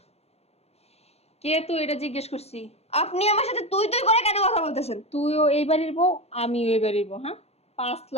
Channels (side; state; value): right; late; 0.30 ms